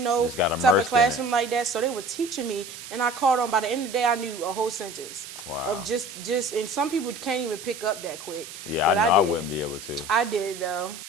no type of classroom like that. So they were teaching me, and I caught on. By the end of the day, I knew a whole sentence. Wow. Of just, and some people can't even pick up that quick. Yeah, but I wouldn't be able to. I did, though.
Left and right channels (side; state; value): right; noise; hiss, 13 dB below the sound